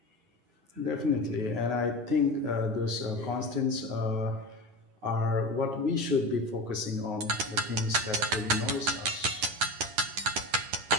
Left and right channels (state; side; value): late; left; 10 ms